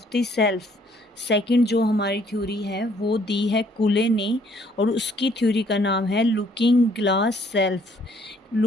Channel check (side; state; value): both; normal; correlation 0.63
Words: the self. Second जो हमारी थ्योरी है वो दी है कुले ने और उसकी थ्योरी का नाम है looking glass self.